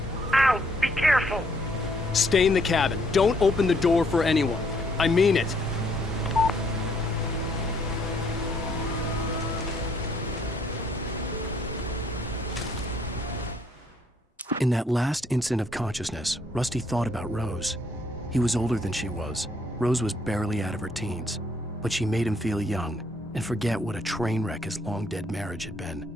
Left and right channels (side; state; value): both; normal; correlation 0.68